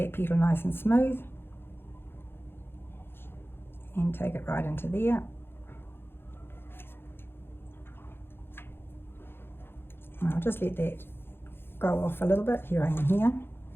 petal nice and smooth. And take it right into there. And I'll just let that go off a little bit. Here I am here. And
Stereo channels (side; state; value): right; late; 0.11 ms